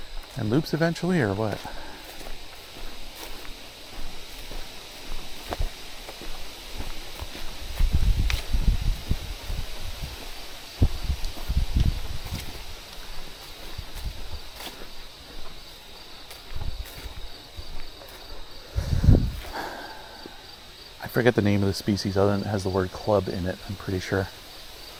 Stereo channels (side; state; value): both; identical; correlation 1.00